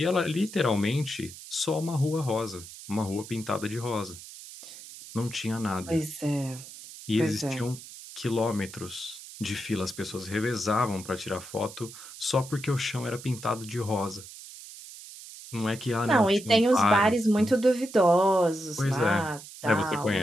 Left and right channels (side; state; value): right; noise; hiss, 15 dB below the sound